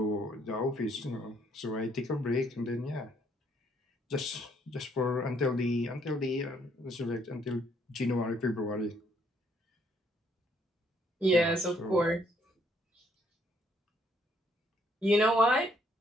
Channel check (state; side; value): normal; both; correlation 0.68